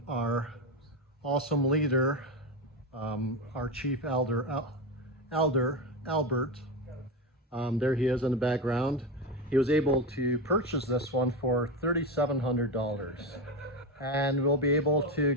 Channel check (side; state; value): both; normal; correlation 0.15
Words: our awesome leader, our chief elder, Albert, there he is in the background. He was able to purchase this one for $3,700, and we'll be able to